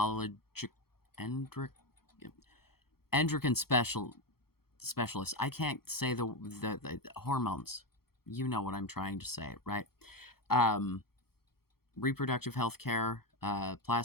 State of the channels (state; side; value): late; right; 0.94 ms